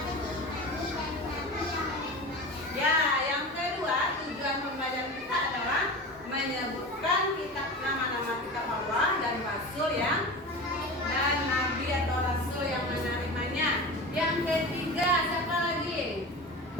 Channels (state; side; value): normal; both; correlation 0.30